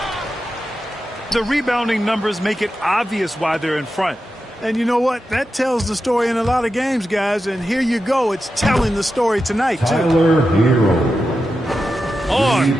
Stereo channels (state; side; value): normal; both; correlation 0.90